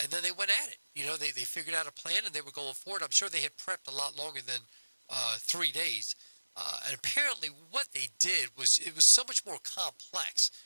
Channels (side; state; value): both; inverted; correlation -1.00